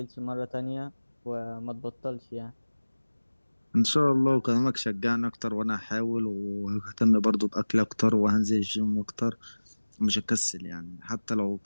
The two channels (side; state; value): both; inverted; correlation -1.00